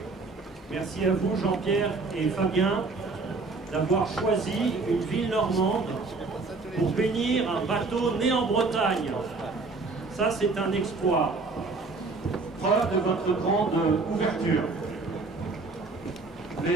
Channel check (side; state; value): left; quieter; 3.8 dB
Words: Merci à vous, Jean-Pierre et Fabien, d'avoir choisi une ville normande pour bénir un bateau né en Bretagne. Ça, c'est un exploit. Preuve de votre grande ouverture.